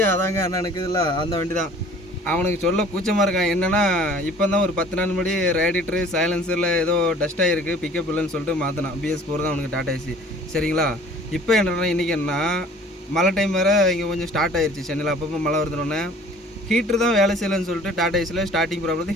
அதாங்க அண்ணனுக்கு இல்லை அந்த வண்டி தான். அவனுக்கு சொல்ல கூச்சமாக இருக்கான். என்னென்னா இப்போ தான் ஒரு 10 நாள் முன்னாடி ரேடிட்டரு சைலன்சரில் ஏதோ டஸ்ட் ஆகிருக்கு, பிக்கப் இல்லைன்னு சொல்லிட்டு மாற்றினான். BS4 தான் அவனுக்கு டாடா ஏசி. சரிங்களா? இப்போ என்னென்னா இன்றைக்கி என்ன மழை டைம் வேறு இங்கே கொஞ்சம் ஸ்டார்ட் ஆயிடுச்சு சென்னையில். அப்பப்போ மழை வருதுன்னொன்னே ஹீட்ரு தான் வேலை செய்யலைன்னு சொல்லிட்டு டாடா ஏசியில் ஸ்டார்டிங் ப்ராப்ளத்தை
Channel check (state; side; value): normal; both; correlation 0.49